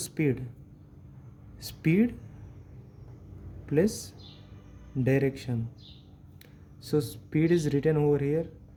plus direction. So speed is written over here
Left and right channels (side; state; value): both; identical; correlation 1.00